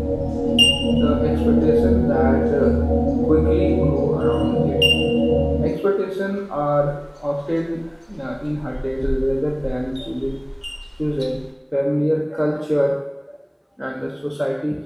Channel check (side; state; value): both; identical; correlation 1.00